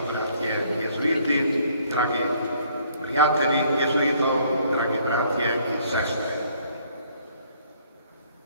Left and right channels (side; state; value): both; inverted; correlation -0.62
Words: jezuiti, dragi prijatelji jezuitov, dragi bratje in sestre.